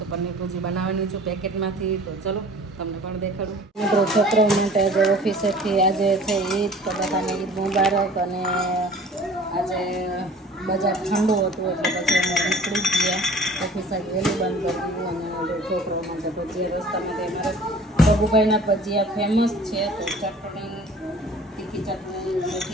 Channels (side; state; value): both; normal; correlation 0.47